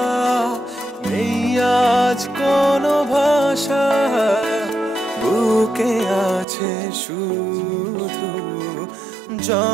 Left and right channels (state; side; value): drops out; left; at 6.5 s